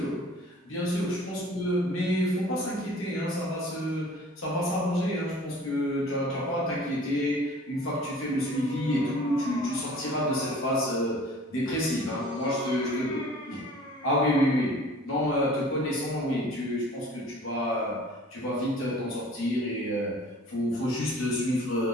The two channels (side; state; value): both; normal; correlation 0.48